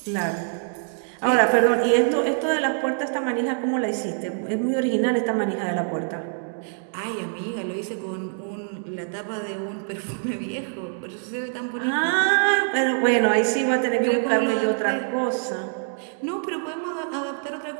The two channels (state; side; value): silent; left; digital silence